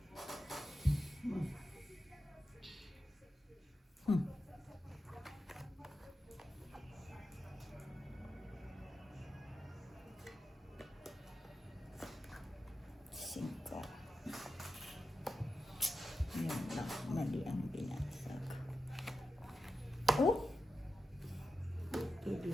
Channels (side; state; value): both; normal; correlation 0.91